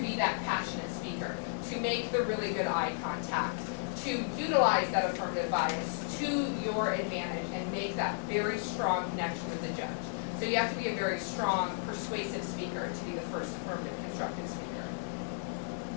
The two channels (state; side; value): silent; right; digital silence